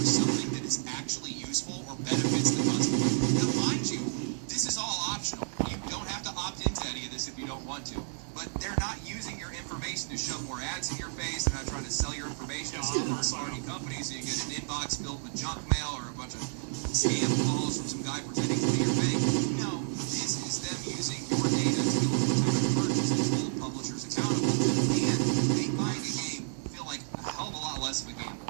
something that is actually useful or benefits the customer. Now, mind you, this is all optional. You don't have to opt into any of this if you don't want to. But they're not box filled with junk mail or a bunch of scam calls from some guy pretending to be your bank. No, this is them using your data to do potential purchases, hold publishers accountable, and make buying a game feel like a hell of a lot less of a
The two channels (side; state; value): left; silent; 57 dB below the other